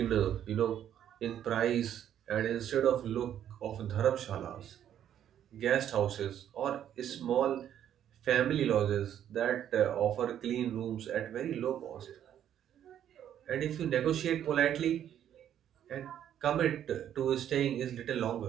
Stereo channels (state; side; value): quieter; left; 10.3 dB